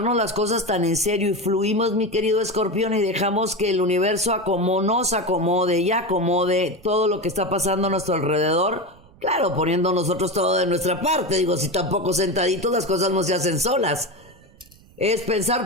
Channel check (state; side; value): noise; right; rumble, 27 dB below the sound